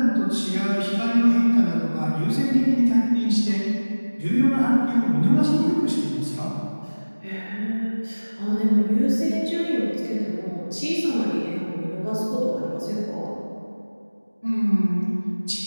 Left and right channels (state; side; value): inverted; both; correlation -1.00